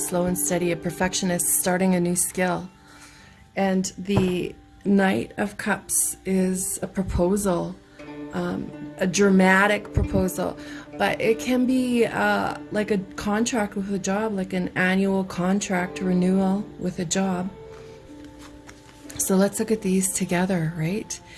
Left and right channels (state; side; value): identical; both; correlation 1.00